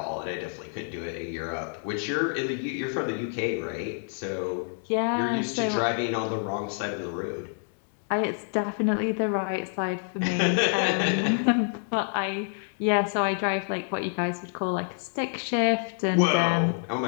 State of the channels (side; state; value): right; silent; 58 dB below the other